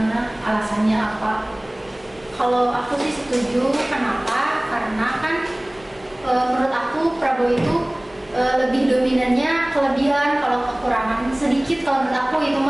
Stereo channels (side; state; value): left; noise; rumble, 27 dB below the sound